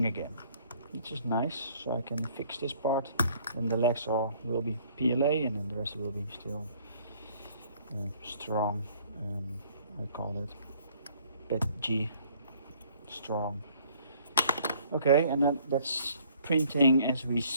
again, which is nice. So I can fix this part, then the legs will be PLA, and then the rest will be still strong, I call it PET G strong. Okay, and then that's printing as we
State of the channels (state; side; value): inverted; both; correlation -0.59